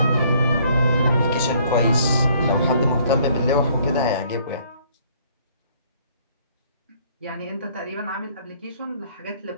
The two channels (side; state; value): both; inverted; correlation -0.62